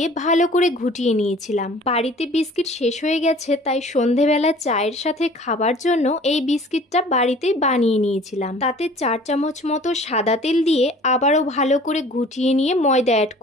ভালো করে ঘুটিয়ে নিয়েছিলাম। বাড়িতে বিস্কিট শেষ হয়ে গেছে, তাই সন্ধেবেলা চায়ের সাথে খাবার জন্য এই বিস্কিটটা বাড়িতেই বানিয়ে নিয়েছিলাম। তাতে 4 চামচ মতো সাদা তেল দিয়ে আবারও ভালো করে ঘুটিয়ে নিয়ে ময়দা অ্যাড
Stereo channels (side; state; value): both; normal; correlation 0.49